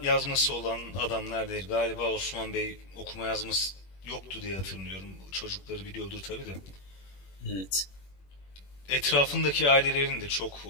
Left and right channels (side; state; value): right; late; 21 ms